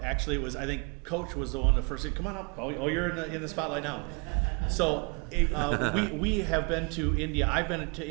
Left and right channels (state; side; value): quieter; left; 33.8 dB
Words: Actually, it was, I think Coach was the one that first said, "Come on up." Oh, you're in the spotlight now. So we have been to India. I've been to